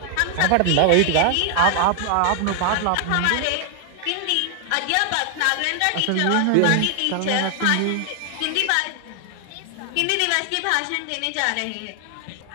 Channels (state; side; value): different; both; correlation 0.00